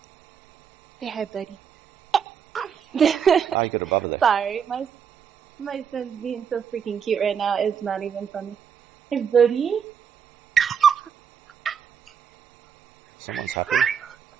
Say hi, buddy. Oh, you got a bubble there. Sorry, my son's being so freaking cute right now. It's not even funny. Hey, buddy. Someone's happy.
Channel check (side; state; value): left; quieter; 7.4 dB